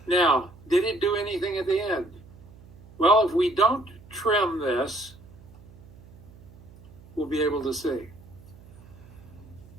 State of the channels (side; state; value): right; noise; hum, 21 dB below the sound